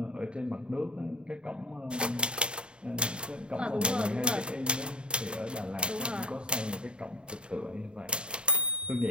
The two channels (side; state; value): left; late; 0.052 ms